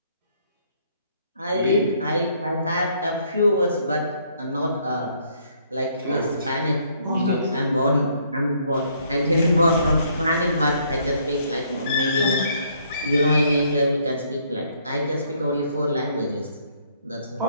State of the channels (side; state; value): both; inverted; correlation -0.67